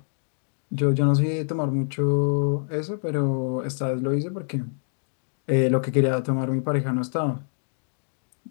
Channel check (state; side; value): silent; right; digital silence